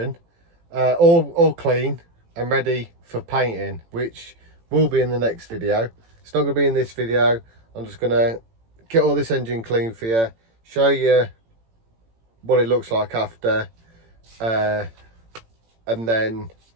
all clean and ready for painting, which will be in the next video. It's not going to be in this video. I'm just going to get all this engine clean for you, show you what it looks like after, and then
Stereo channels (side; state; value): left; late; 18 ms